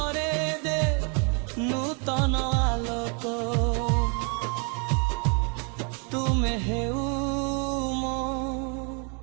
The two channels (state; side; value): quieter; left; 36.5 dB